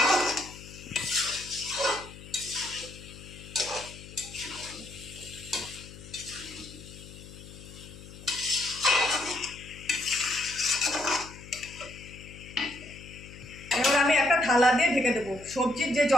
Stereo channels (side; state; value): left; noise; hum, 16 dB below the sound